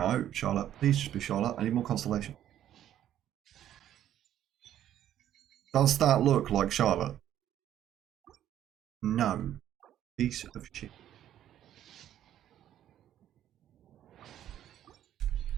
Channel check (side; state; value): left; quieter; 11.4 dB